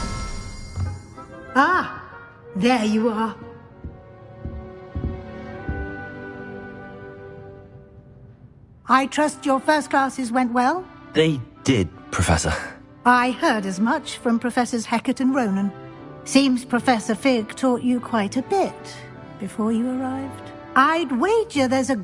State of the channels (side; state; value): both; identical; correlation 1.00